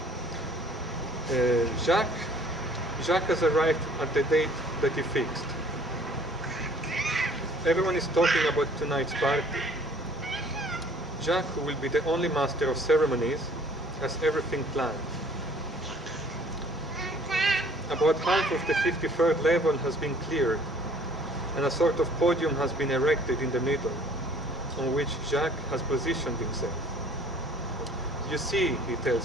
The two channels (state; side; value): normal; both; correlation 0.55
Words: Jacques has arrived at the date that he fixed. Everyone is talking about tonight's party. Jacques, who will be the only master of ceremonies, has everything planned. About half of the 53rd level has been cleared, and a sort of podium has been erected in the middle, on which Jacques has positioned himself. You see, he